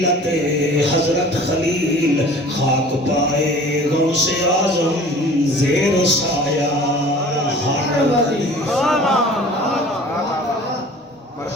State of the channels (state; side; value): normal; both; correlation 0.45